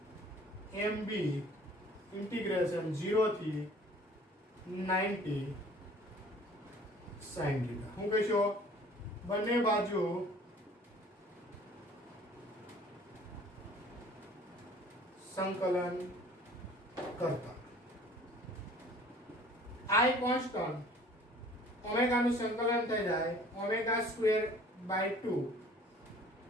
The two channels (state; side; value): normal; both; correlation 0.51